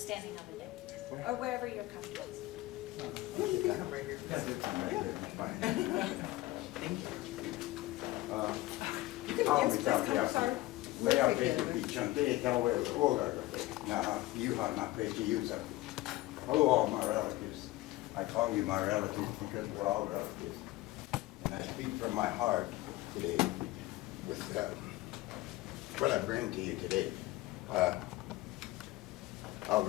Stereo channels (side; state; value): right; quieter; 17.9 dB